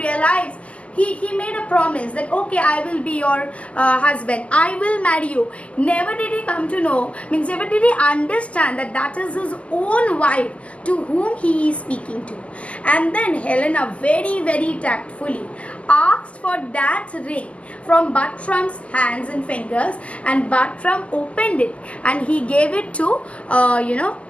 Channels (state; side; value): late; right; 0.062 ms